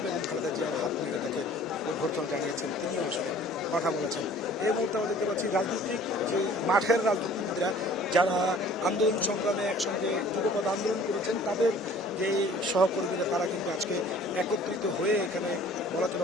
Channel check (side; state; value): both; normal; correlation 0.51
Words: বেগম খালেদা জিয়ার হাত ধরে তাকে অভ্যর্থনা জানিয়েছেন, তিনিও আসলে কথা বলেছেন। এই মুহূর্তে আমরা দেখতে পাচ্ছি রাজনৈতিক যে মাঠের রাজনীতিবিদরা যারা আন্দোলন সংগ্রামে একসঙ্গে যুগপৎ আন্দোলন করেছেন তাদের যে সহকর্মীরা তারা কিন্তু আজকে একত্রিত হয়ে এখানে বলা